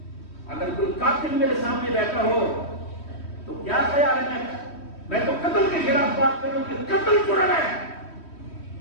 اگر کوئی قاتل میرے سامنے بیٹھا ہو تو کیا خیال ہے میں تو قتل کے خلاف بات کروں کہ قتل جرم ہے.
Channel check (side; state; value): right; late; 3.1 ms